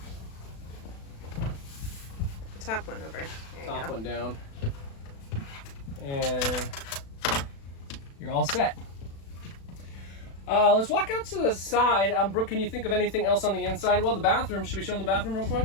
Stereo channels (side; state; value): right; late; 36 ms